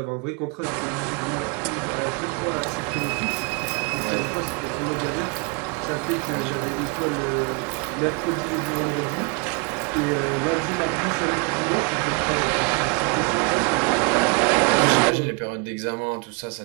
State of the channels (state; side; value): quieter; left; 33.0 dB